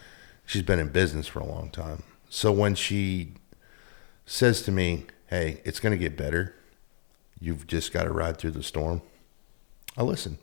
She's been in business for a long time. So when she says to me, hey, it's going to get better. You've just got to ride through the storm. I listen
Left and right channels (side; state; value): right; silent; digital silence